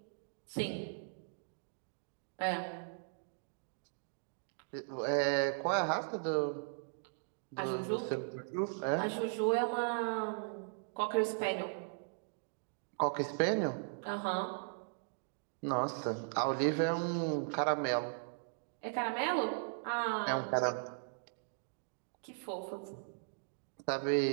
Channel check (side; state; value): left; silent; digital silence